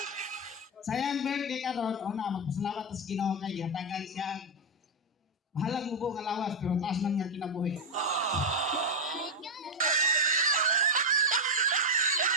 Sayang birthday karon una magpasalamat sa Ginoo kay gihatagan siya bahalang mubo nga lawas pero taas man nga kinabuhi.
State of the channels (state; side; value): normal; both; correlation 0.03